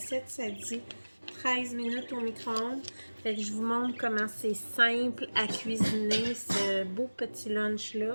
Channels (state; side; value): inverted; both; correlation -1.00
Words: ça dit 13 minutes au micro-ondes. Fait que je vous montre comment c'est simple à cuisiner ce beau petit lunch